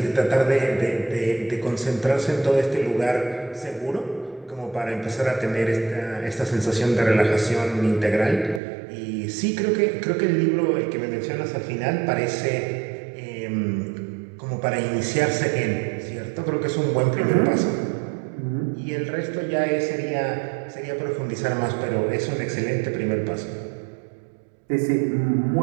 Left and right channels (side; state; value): left; drops out; at 8.6 s